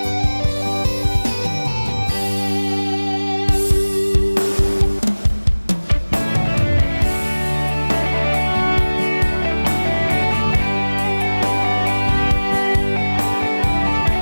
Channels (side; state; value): both; inverted; correlation -1.00